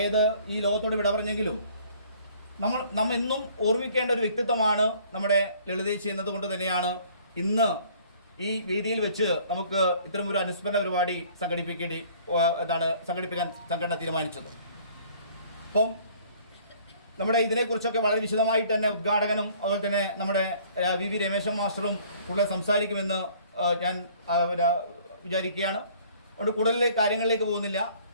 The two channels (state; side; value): inverted; both; correlation -0.56